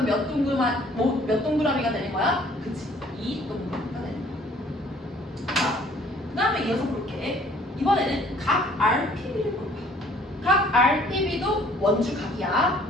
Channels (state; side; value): normal; both; correlation 0.57